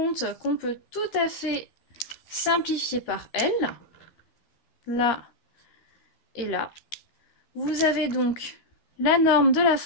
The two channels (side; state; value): right; late; 13 ms